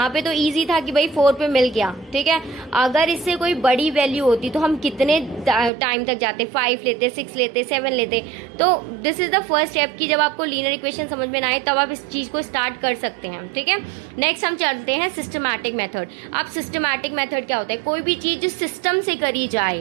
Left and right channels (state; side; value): drops out; left; at 5.7 s